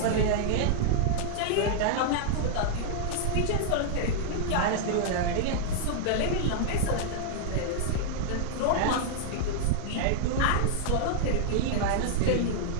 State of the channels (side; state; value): both; different; correlation -0.01